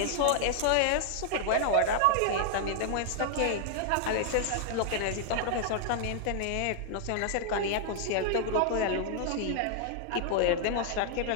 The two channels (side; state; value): both; different; correlation -0.01